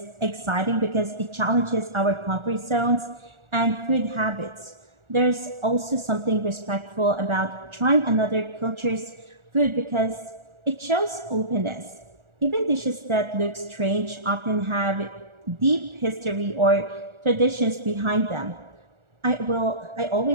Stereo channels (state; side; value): late; left; 1.4 ms